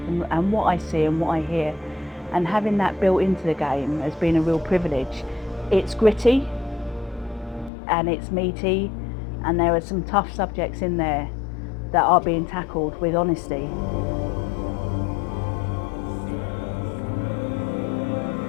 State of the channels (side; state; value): right; drops out; at 7.7 s